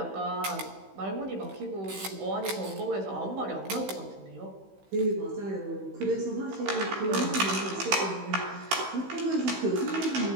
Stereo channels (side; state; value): left; late; 16 ms